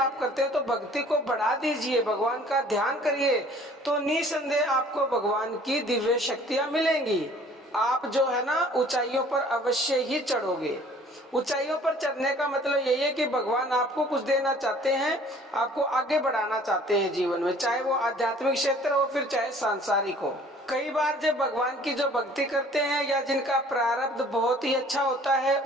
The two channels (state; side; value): normal; both; correlation 0.53